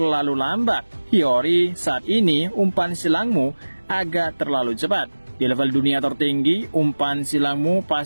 lambat. Hiyori, saat ini umpan silangmu agak terlalu cepat. Di level dunia tertinggi, umpan silangmu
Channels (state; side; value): inverted; both; correlation -1.00